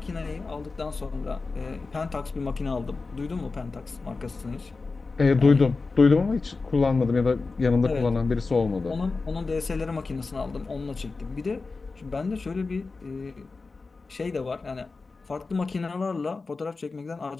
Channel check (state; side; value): quieter; right; 4.0 dB